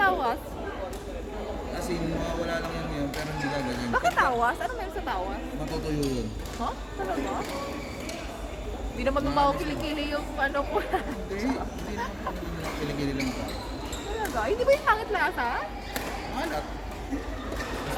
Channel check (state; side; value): identical; both; correlation 1.00